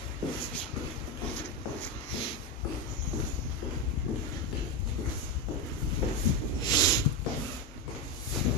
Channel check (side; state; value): both; normal; correlation 0.10